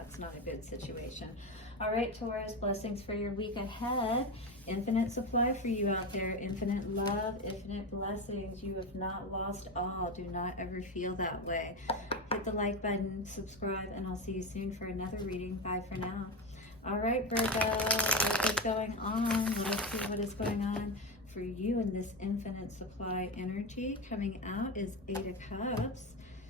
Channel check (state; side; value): normal; both; correlation 0.17